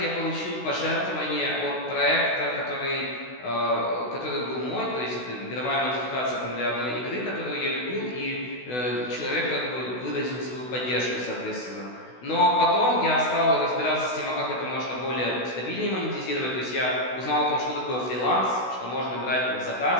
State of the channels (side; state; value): right; late; 16 ms